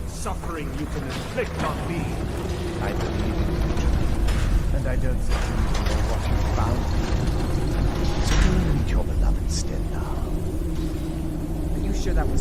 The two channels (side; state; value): both; identical; correlation 1.00